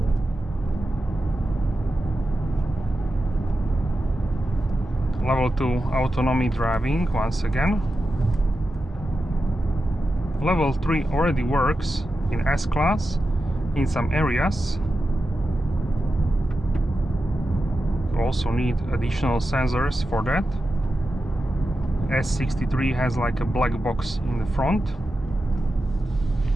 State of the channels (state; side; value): normal; both; correlation 0.91